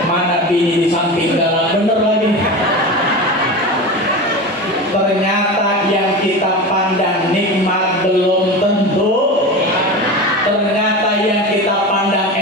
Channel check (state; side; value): normal; both; correlation 0.27